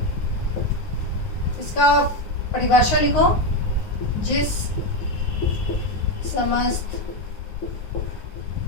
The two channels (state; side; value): late; right; 9.5 ms